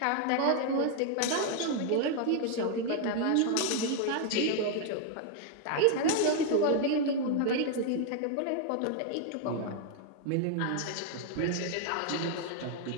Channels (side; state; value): both; different; correlation 0.00